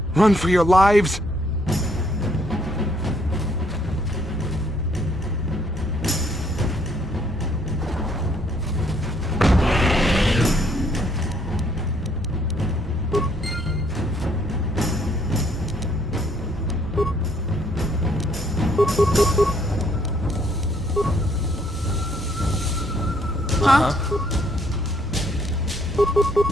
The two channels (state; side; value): normal; both; correlation 0.67